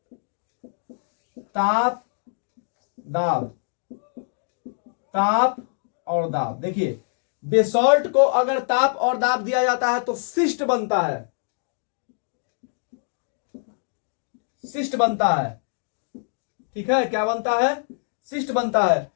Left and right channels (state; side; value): silent; right; 62 dB below the other